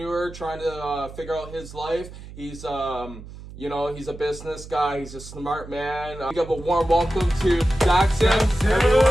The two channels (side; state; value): right; noise; hum, 15 dB below the sound